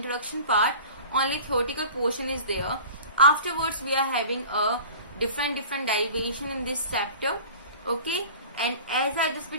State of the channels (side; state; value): both; inverted; correlation -0.41